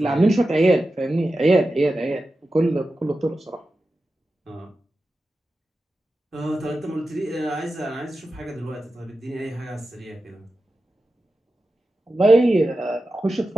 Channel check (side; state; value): both; normal; correlation 0.92